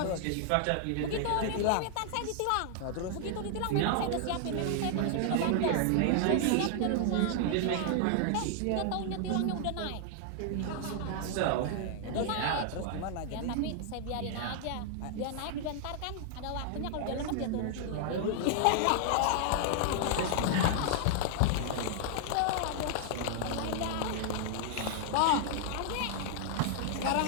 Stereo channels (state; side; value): different; both; correlation 0.00